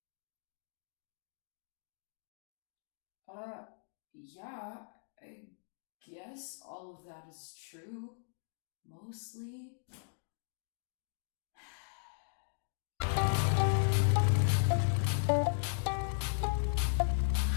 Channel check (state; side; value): silent; right; digital silence